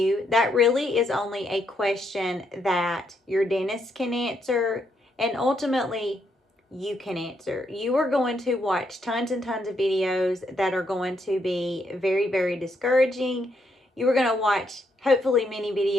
That really is only a question that your dentist can answer, and ultimately you can answer. You are going to watch tons and tons of videos that are going to be very, very discouraging. You are going to watch hopefully many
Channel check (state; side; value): normal; both; correlation 0.76